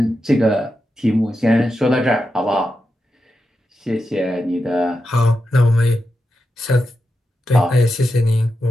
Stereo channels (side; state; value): both; normal; correlation 0.88